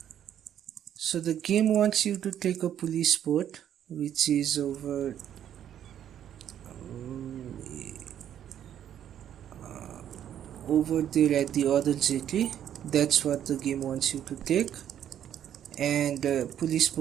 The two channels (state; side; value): quieter; left; 10.1 dB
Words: So the game wants you to take a police boat, which is over there at the other jetty. That's what the game wants you to take. And police